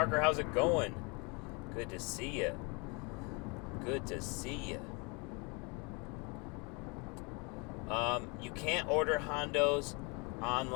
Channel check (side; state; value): right; quieter; 30.8 dB